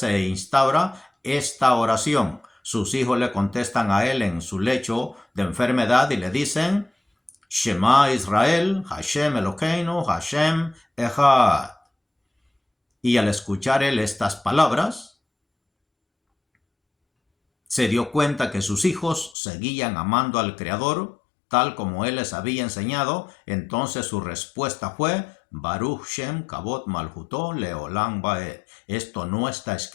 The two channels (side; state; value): right; drops out; at 19.3 s